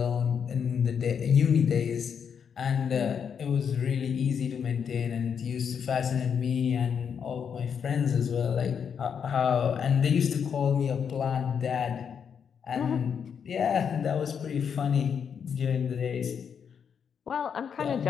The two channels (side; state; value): right; quieter; 7.2 dB